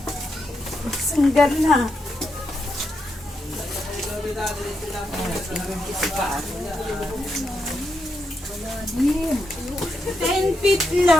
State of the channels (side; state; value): both; normal; correlation 0.83